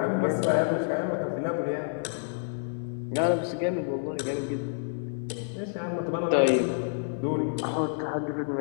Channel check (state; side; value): silent; right; 59 dB below the other